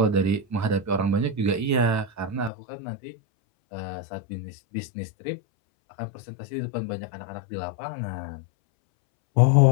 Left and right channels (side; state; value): right; drops out; at 2.5 s